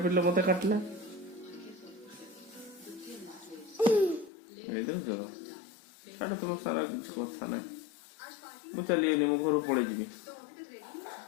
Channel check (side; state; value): right; drops out; at 4.3 s